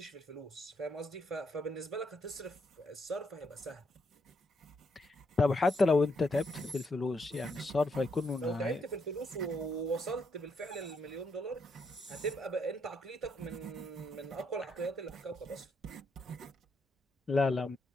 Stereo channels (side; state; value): both; normal; correlation 0.76